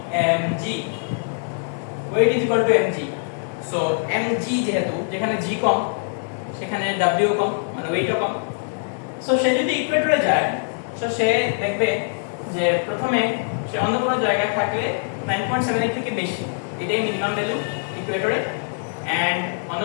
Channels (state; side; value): silent; right; 63 dB below the other